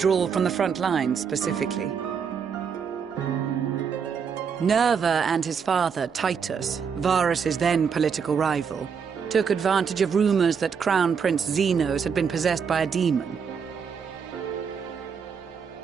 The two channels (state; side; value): quieter; left; 6.5 dB